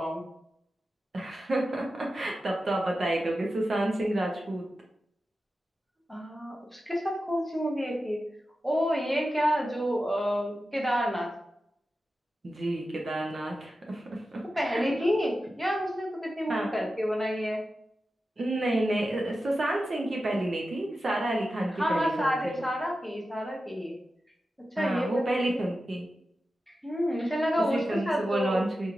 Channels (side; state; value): both; normal; correlation 0.92